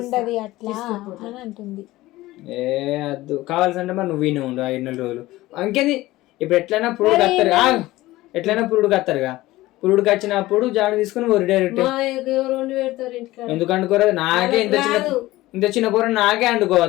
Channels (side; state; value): right; quieter; 17.7 dB